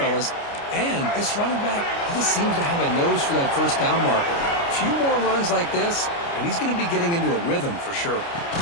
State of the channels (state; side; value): late; right; 29 ms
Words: And this running back, he just seems to have a nose for that first down marker. A few more runs like this, and he's going to be getting into a rhythm for sure.